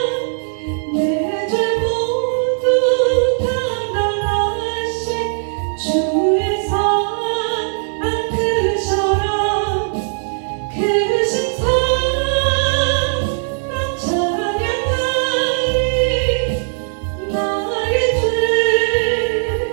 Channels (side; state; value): left; silent; digital silence